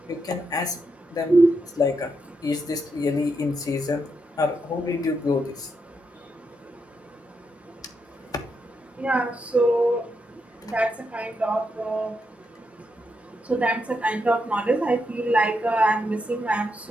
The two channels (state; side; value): normal; both; correlation 0.82